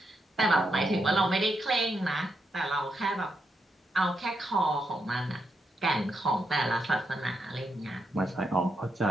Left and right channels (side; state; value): both; normal; correlation 0.82